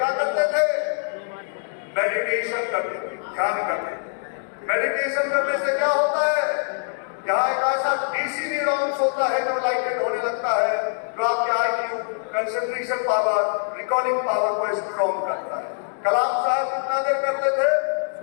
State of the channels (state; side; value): silent; right; digital silence